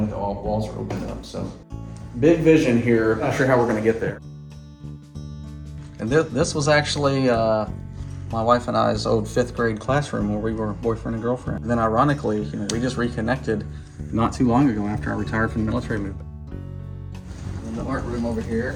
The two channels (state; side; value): identical; both; correlation 1.00